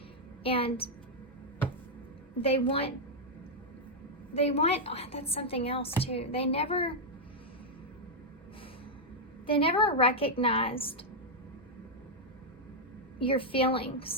And they want, oh, that's something else too. They never recognized your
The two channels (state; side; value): normal; both; correlation -0.03